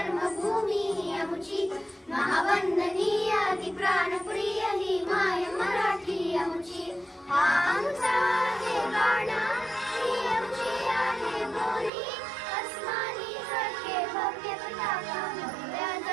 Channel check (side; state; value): left; drops out; at 11.9 s